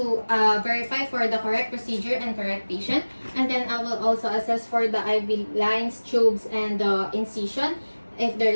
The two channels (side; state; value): both; inverted; correlation -1.00